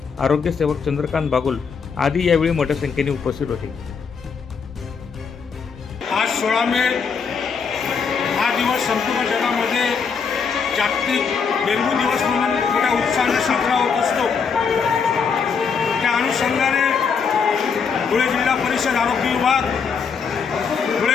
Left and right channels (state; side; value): quieter; right; 5.9 dB